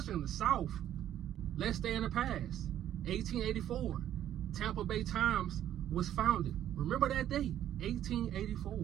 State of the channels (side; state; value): left; quieter; 11.4 dB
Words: in the South. Let's stay in the past. 1884, Tampa Bay Times was founded. Remember that date,